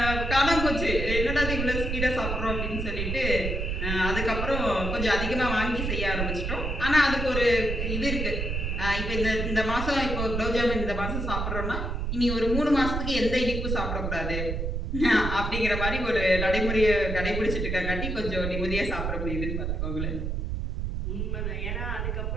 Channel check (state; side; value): noise; right; rumble, 2 dB below the sound